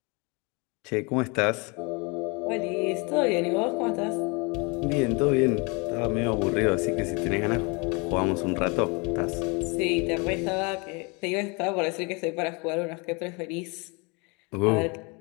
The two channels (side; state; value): right; quieter; 30.4 dB